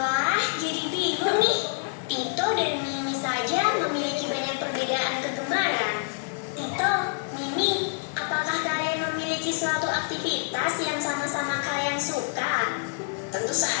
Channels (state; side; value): silent; right; digital silence